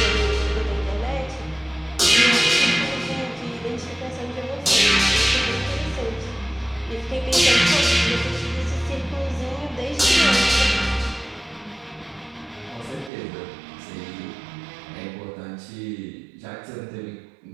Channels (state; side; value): drops out; left; at 13.1 s